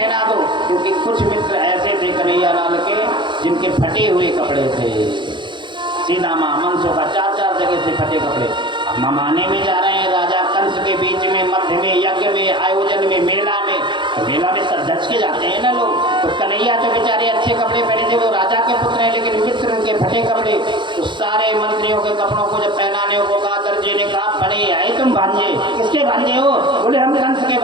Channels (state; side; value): late; left; 0.23 ms